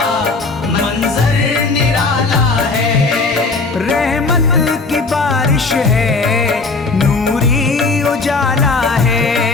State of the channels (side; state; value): right; quieter; 3.8 dB